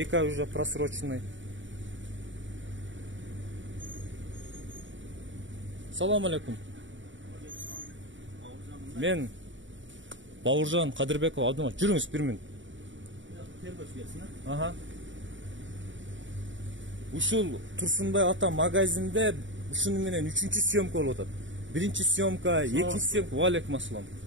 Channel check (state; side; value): late; left; 0.55 ms